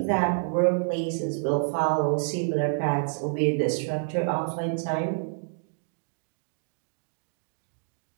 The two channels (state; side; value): silent; left; digital silence